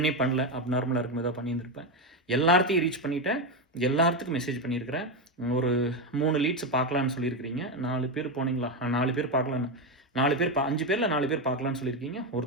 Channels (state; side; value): normal; both; correlation 0.10